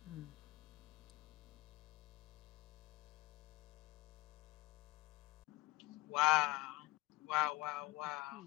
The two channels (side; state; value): right; quieter; 20.1 dB